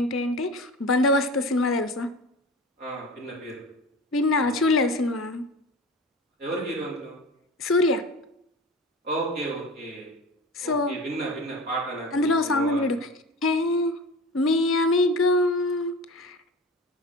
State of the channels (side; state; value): both; normal; correlation 0.33